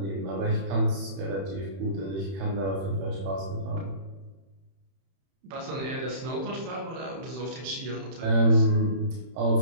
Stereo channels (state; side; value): late; left; 31 ms